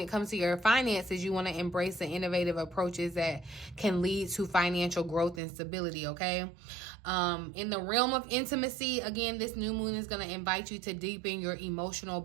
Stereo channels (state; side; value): drops out; left; at 5.4 s